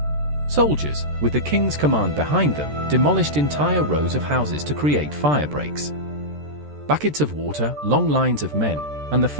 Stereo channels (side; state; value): left; late; 13 ms